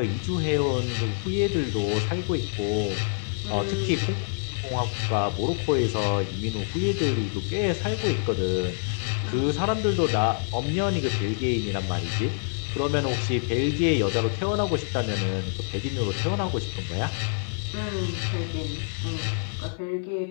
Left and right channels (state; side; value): silent; right; 55 dB below the other